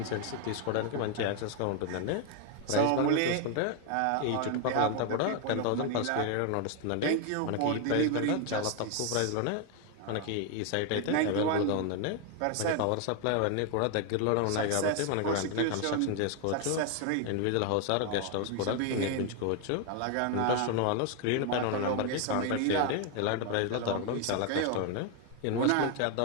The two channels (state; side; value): different; both; correlation 0.00